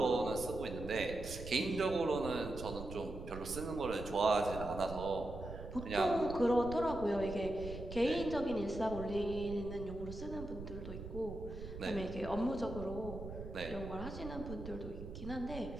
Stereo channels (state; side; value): noise; right; rumble, 10 dB below the sound